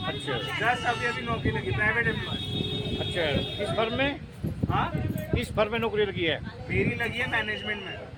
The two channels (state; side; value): identical; both; correlation 1.00